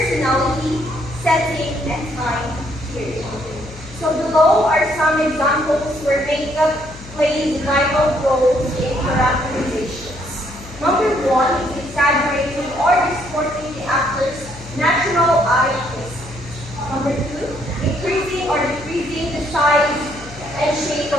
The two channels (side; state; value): left; noise; hum, 17 dB below the sound